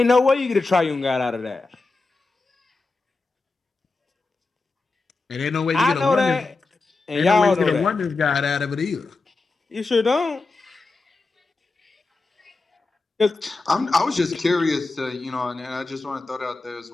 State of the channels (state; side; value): quieter; right; 3.7 dB